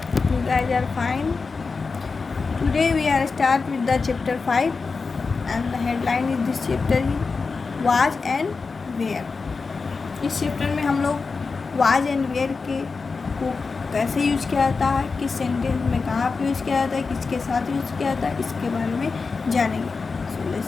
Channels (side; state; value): right; quieter; 4.5 dB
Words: you guys are fine. Today we are start with the chapter 5 and the headline is this chapter he was and where. इस chapter में हम लोग was and where के को कैसे यूज किया जाता है, किस सेंटेंस में कहाँ पे यूज किया जाता है, किसके साथ यूज किया जाता है, इसके बारे में जानेंगे. So